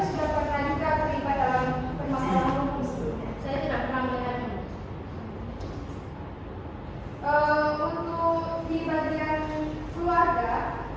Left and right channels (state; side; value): identical; both; correlation 1.00